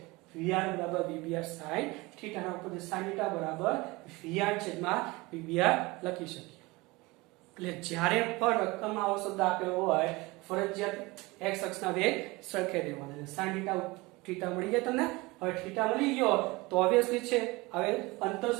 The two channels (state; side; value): quieter; left; 23.0 dB